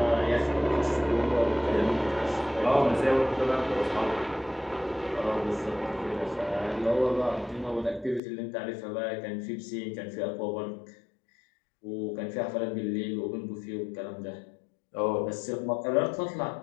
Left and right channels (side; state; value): right; drops out; at 8.2 s